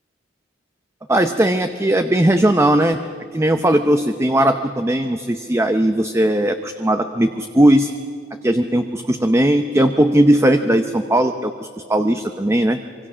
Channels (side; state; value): both; normal; correlation 0.82